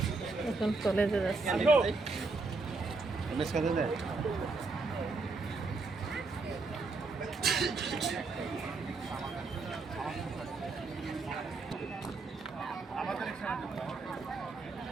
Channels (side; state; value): left; quieter; 3.9 dB